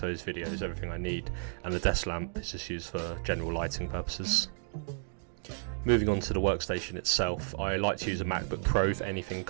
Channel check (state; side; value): silent; left; 56 dB below the other